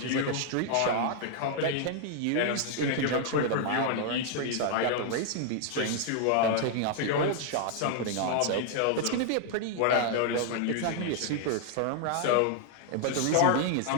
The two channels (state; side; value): different; both; correlation 0.00